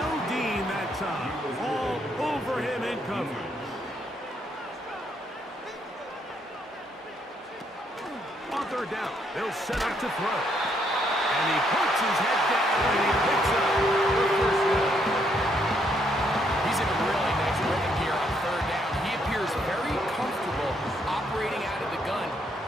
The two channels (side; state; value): both; normal; correlation 0.73